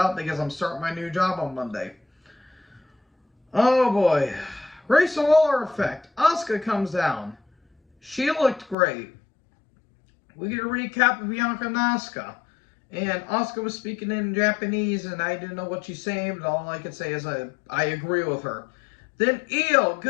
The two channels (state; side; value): drops out; right; at 8.8 s